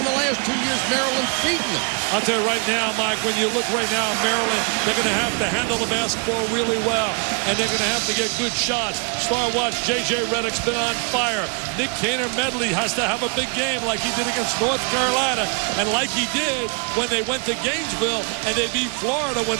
The last 2 years, Maryland's beaten them. I'll tell you right now, Mike, when you look right now, Maryland, they're going to have to handle the basketball really well, and they're going to have to get good shots. Star watch, J.J. Redick's been on fire. Nick Medley has to have a big game like he did against North Carolina, and like he did when they went to Gainesville and they beat Florida when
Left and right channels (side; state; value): left; quieter; 35.9 dB